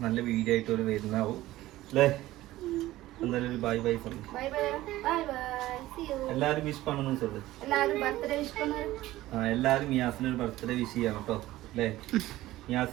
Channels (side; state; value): left; quieter; 16.2 dB